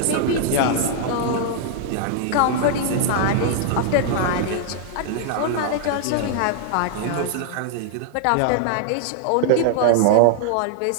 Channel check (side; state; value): both; different; correlation -0.01